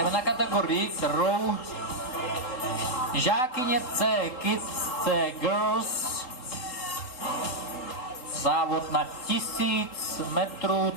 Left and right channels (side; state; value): right; late; 3.9 ms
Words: na kategorii, kterou žákyně C, Kids C, Girls. Závod na 1000 metrů,